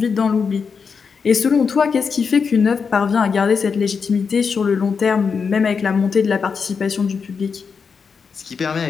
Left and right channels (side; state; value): right; quieter; 5.7 dB